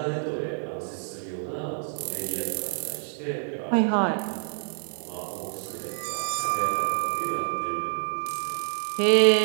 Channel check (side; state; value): left; silent; digital silence